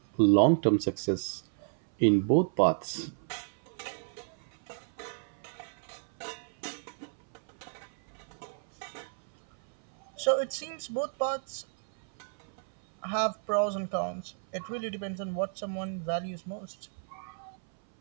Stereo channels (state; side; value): silent; left; 57 dB below the other